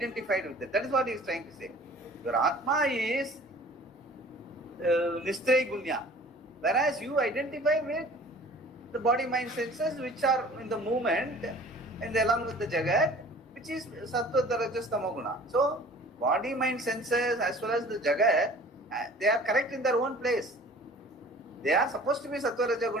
with it. That is what he is trying to say. Your Atma is Nistraya Gunya, whereas you identify with the body, mind, senses which are in the movement and along with the Jagat, which is Sattva, Rajas, Tamoguna. So, body, mind, senses as well as the Jagat, they are correct in their own place. They are supposed to be Sattva, Raja,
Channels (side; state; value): both; normal; correlation 0.47